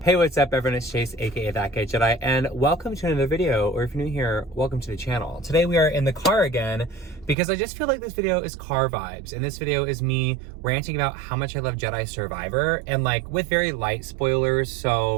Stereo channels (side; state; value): left; drops out; at 7.4 s